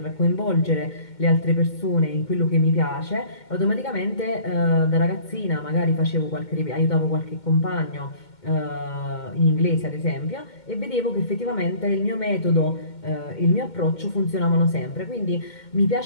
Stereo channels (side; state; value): right; late; 2.2 ms